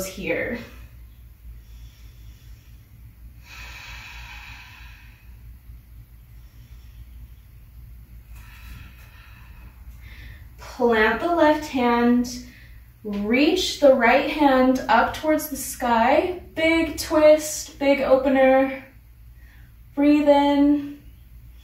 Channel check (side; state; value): both; identical; correlation 1.00